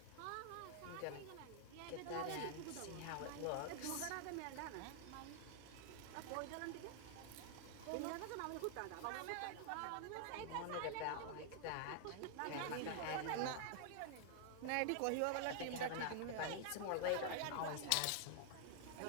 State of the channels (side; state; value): both; different; correlation 0.00